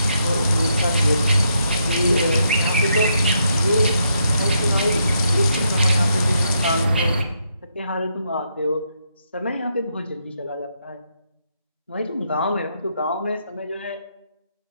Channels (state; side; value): inverted; both; correlation -0.78